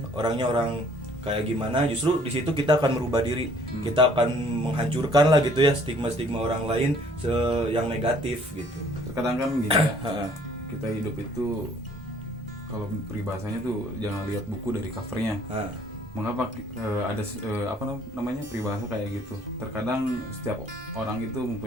orangnya orang kayak gimana, justru di situ kita akan merubah diri. Kita akan menghancurkan lah gitu ya stigma-stigma orang lain yang negatif gitu. Terkadang kan gini ya, kita hidup itu kalau peribahasanya tuh jangan lihat buku dari covernya. Mengapa ada apa namanya peribahasa kayak gitu? Terkadang setiap orang itu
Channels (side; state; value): both; normal; correlation 0.58